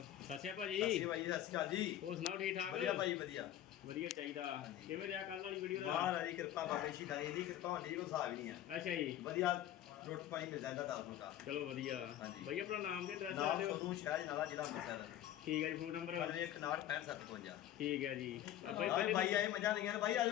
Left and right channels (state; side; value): quieter; right; 12.1 dB